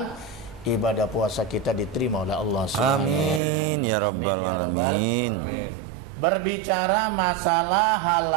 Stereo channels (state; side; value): drops out; left; at 3.4 s